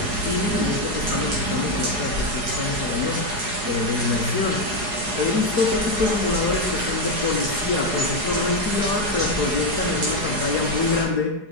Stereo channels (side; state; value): left; late; 4.8 ms